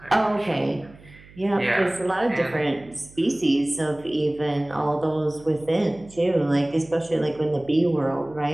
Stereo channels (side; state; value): right; noise; hum, 23 dB below the sound